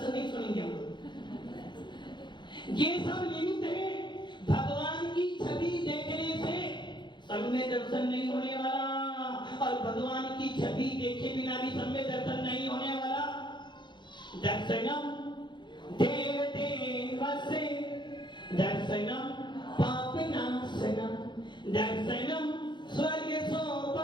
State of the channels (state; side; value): late; right; 0.22 ms